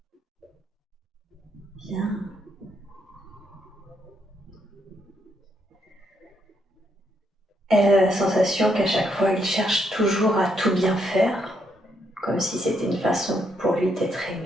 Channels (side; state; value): both; normal; correlation 0.76